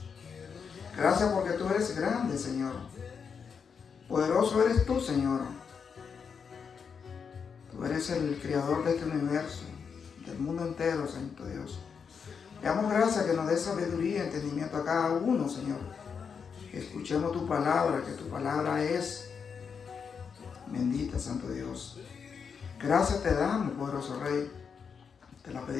Gracias porque tú eres grande, Señor. Poderoso eres tú, Señor. Tú eres el creador de este universo, del mundo entero, Santo Dios. Te damos gracias que nos dé sabiduría y entendimiento a cada uno, Señor. Que escuchemos tu palabra, que tu palabra es bendita, Santo Dios. Gracias te damos, poderoso Rey. Te la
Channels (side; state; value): right; quieter; 6.3 dB